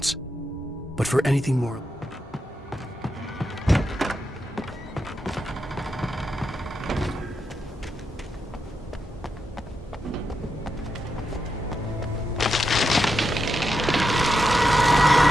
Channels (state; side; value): normal; both; correlation 0.85